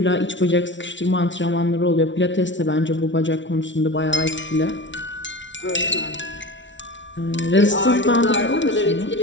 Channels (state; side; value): late; right; 0.55 ms